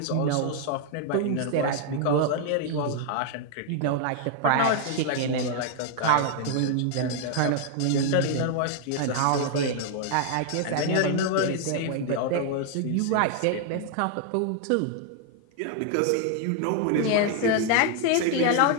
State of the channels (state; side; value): different; both; correlation 0.00